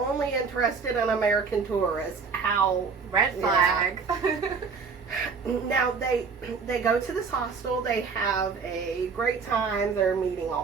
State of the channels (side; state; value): left; quieter; 5.2 dB